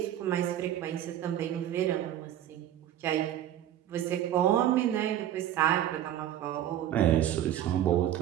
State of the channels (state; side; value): quieter; left; 11.8 dB